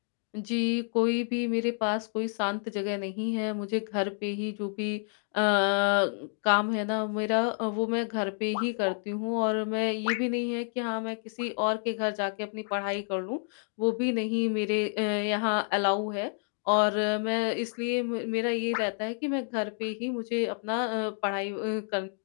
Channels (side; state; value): right; silent; 57 dB below the other